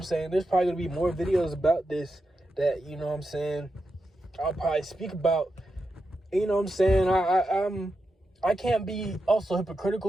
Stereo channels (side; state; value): both; normal; correlation 0.88